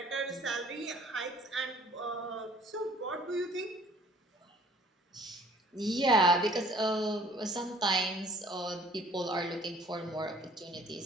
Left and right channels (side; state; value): both; normal; correlation 0.55